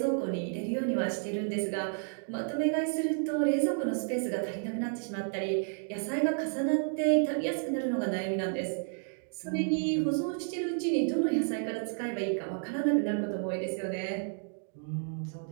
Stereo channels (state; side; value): silent; left; 57 dB below the other